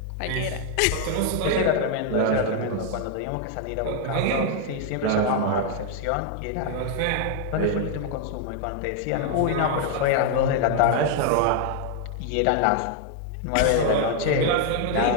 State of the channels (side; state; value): both; different; correlation 0.00